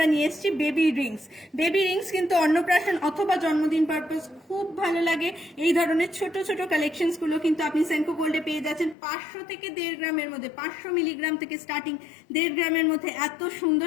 নিয়ে এসেছি বেবি রিংস। বেবি রিংস কিন্তু অন্নপ্রাশন অথবা জন্মদিন পারপাস খুব ভালো লাগে। এই ধরনের ছোট ছোট কালেকশনস গুলো কিন্তু আপনি সেনকো গোল্ডে পেয়ে যাচ্ছেন 500 থেকে 1.5 গ্রামের মধ্যে, 500 মিলিগ্রাম থেকে স্টার্টিং 1.5 গ্রামের মধ্যে এত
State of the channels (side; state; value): right; drops out; at 9.0 s